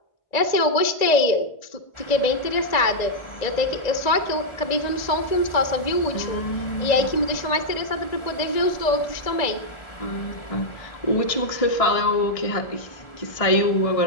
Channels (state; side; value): late; right; 1.9 ms